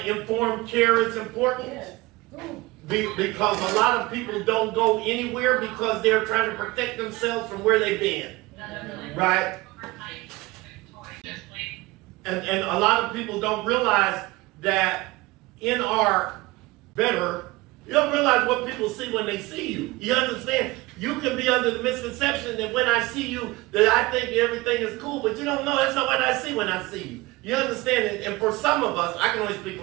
care is important. Yes. Because a lot of people don't go anywhere because they're trying to protect themselves from where they've been. Right? And a lot of people don't realize that in our you don't realize what people see when they see you. You understand? You can be under the misconception that when I see you, that I think everything is cool, but you don't know that's not what I see when I see you. You understand it? And for some of us, I can only speak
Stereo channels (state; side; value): quieter; left; 21.3 dB